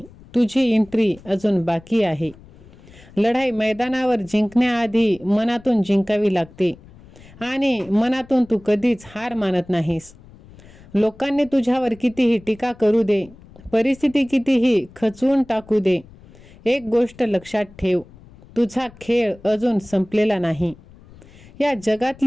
तुझी एंट्री अजून बाकी आहे. लढाई मैदानावर जिंकण्याआधी मनातून जिंकावी लागते आणि मनातून तू कधीच हार मानत नाहीस. लोकांनी तुझ्यावर कितीही टीका करू दे, परिस्थिती कितीही खचवून टाकू दे, एक गोष्ट लक्षात ठेव, तुझा खेळ अजून संपलेला नाही. या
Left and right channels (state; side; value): noise; left; rumble, 23 dB below the sound